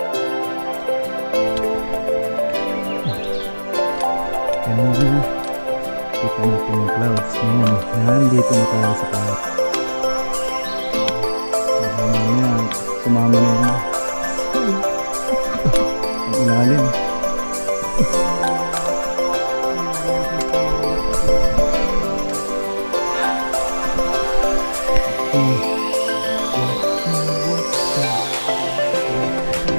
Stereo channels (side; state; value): both; inverted; correlation -1.00